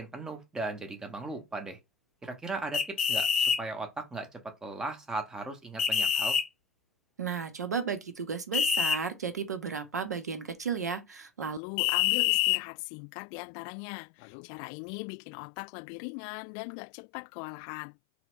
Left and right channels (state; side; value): drops out; right; at 11.6 s